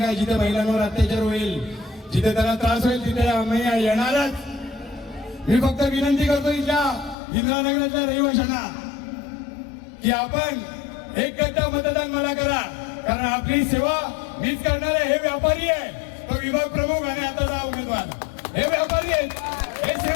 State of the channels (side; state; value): right; drops out; at 7.2 s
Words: आहे. जिथे महिलांवर अत्याचार होईल, जिथे त्यांना त्रास होईल, तिथे आम्ही येणारच. मी फक्त विनंती करतो इथल्या इंदिरानगरातल्या रहिवाशांना की आपण एक गट्टा मतदान मला करा. कारण आपली सेवा मीच करणार आहे. हे व्यापारी आहे, तो विभाग प्रमुख आणि आताचा उमेदवार, हे व्यापारी आहेत, हे